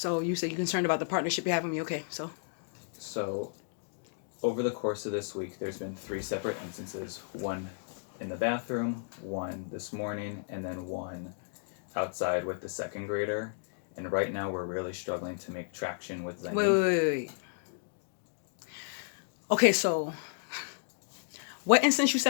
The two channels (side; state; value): right; silent; digital silence